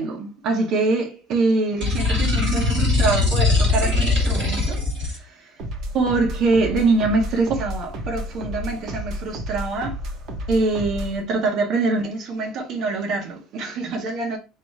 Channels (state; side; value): normal; both; correlation 0.55